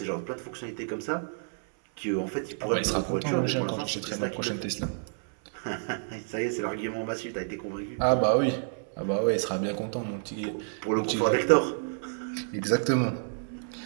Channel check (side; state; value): left; silent; digital silence